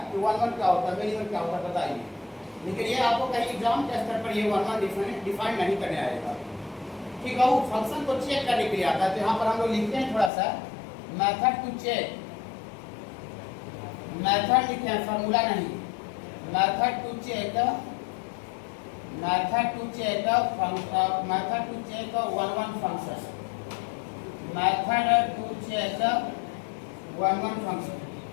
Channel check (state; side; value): drops out; right; at 10.3 s